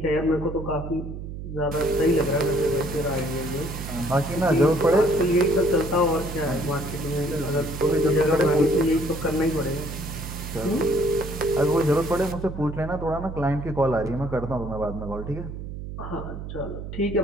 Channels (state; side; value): noise; right; hum, 9 dB below the sound